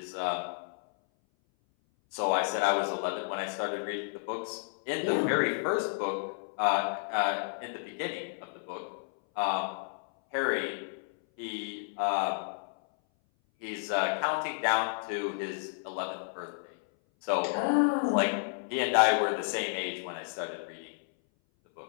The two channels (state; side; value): silent; right; 57 dB below the other